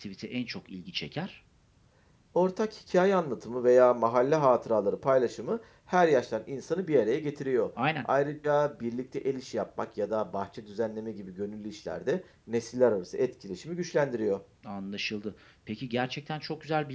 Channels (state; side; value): identical; both; correlation 1.00